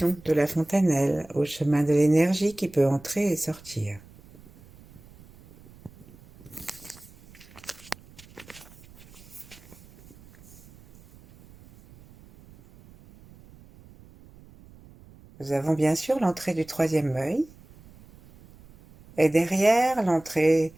de la fontanelle, au chemin de l'énergie qui peut entrer et sortir. Nous avons bien sûr l'entrée du troisième œil et derrière l'entrée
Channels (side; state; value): right; noise; rumble, 23 dB below the sound